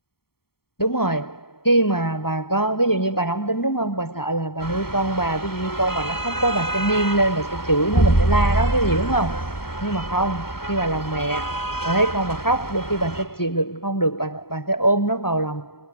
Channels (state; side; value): late; right; 0.95 ms